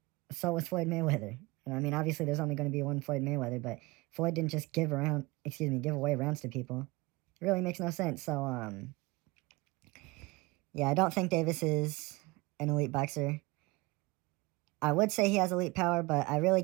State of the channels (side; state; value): left; quieter; 23.3 dB